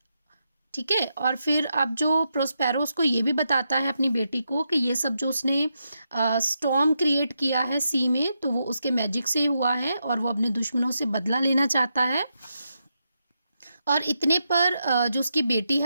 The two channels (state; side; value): inverted; both; correlation -0.84